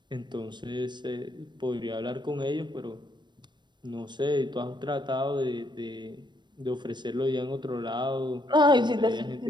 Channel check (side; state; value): left; late; 0.22 ms